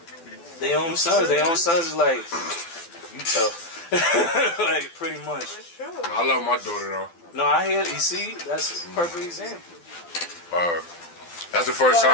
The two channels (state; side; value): late; right; 12 ms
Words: their own sons. Their own sons is like, you tough. Like, pretty much. That's true. I love my daughter though. No, I hear, you see, that's a perfect example. That's the first But,